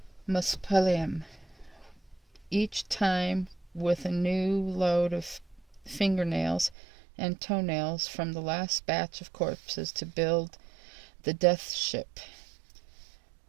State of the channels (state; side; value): drops out; left; at 6.8 s